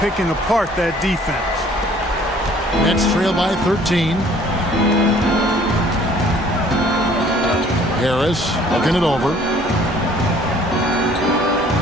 picking apart that defense. Nets trail by 13. Harris looking it over.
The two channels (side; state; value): both; normal; correlation 0.56